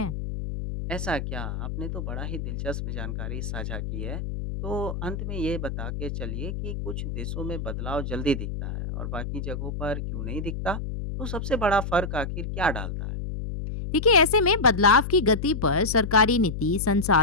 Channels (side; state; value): left; noise; hum, 5 dB below the sound